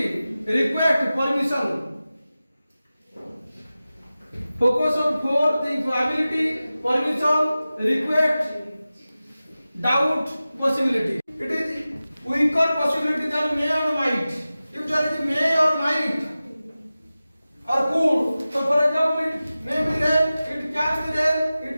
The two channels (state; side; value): inverted; both; correlation -0.96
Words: request, permission. Focus on four things: ability, permission, request, doubt, possibility. It is weaker possibility than may or might. If there is may or might or could, so for example, it may be rain, it can be rain,